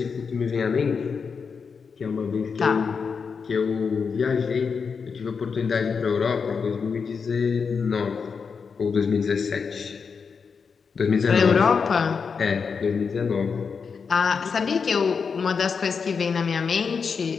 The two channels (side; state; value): right; quieter; 5.6 dB